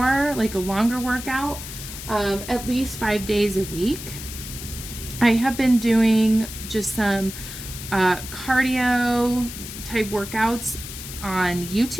like a longer workout, at least 5 days a week. I have been doing just some cardio type workouts on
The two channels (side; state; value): left; noise; hiss, 10 dB below the sound